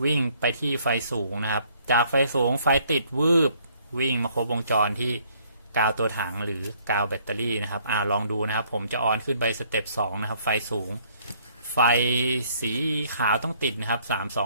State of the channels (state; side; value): inverted; both; correlation -0.63